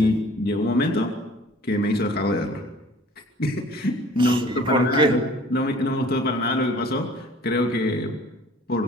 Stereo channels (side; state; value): both; normal; correlation 0.50